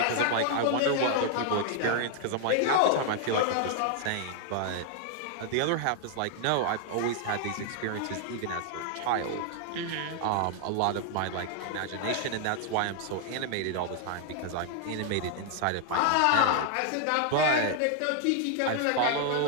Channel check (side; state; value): both; different; correlation 0.00